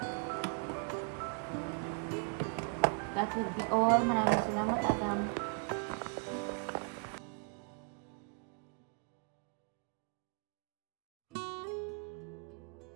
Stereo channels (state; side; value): quieter; left; 36.9 dB